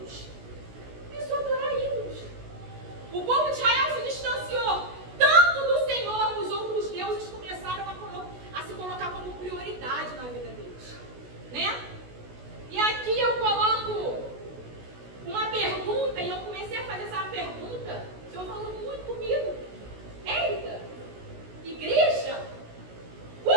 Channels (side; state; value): left; late; 16 ms